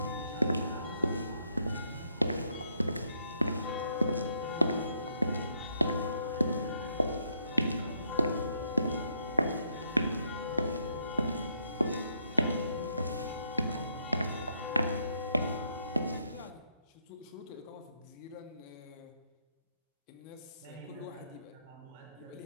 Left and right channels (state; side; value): inverted; both; correlation -0.74